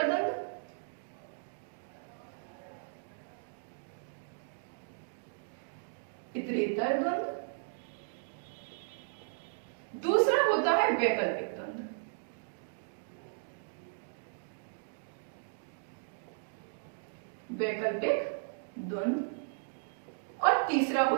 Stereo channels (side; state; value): left; silent; digital silence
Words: द्वंद्व, इतरेतर द्वंद्व। दूसरा होता है वैकल्पिक द्वंद्व, वैकल्पिक द्वंद्व। और तीसरा